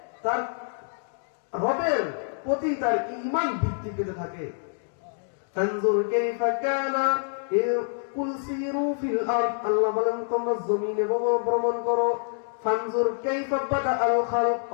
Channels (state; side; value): silent; right; digital silence